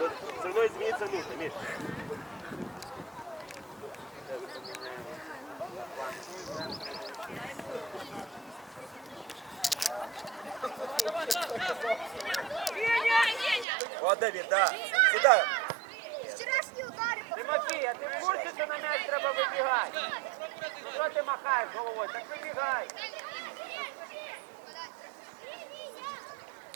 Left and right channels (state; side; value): drops out; left; at 13.7 s